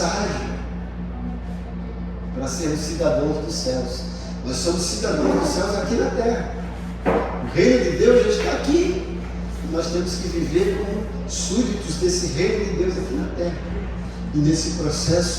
para sermos cidadãos dos céus. Nós somos cidadãos dos céus aqui na terra. O reino de Deus já está aqui. E nós temos que viver como súditos desse reino de Deus aqui na terra. E nesse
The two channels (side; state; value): both; identical; correlation 1.00